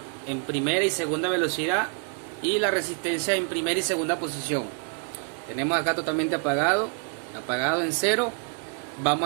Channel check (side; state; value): left; quieter; 35.6 dB